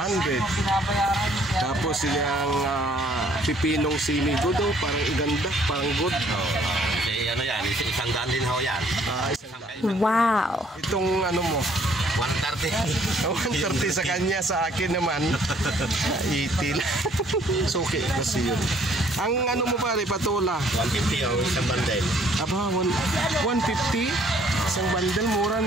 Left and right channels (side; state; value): both; normal; correlation 0.62